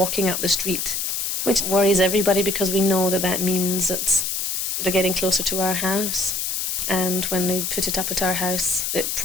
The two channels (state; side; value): noise; left; hiss, 1 dB below the sound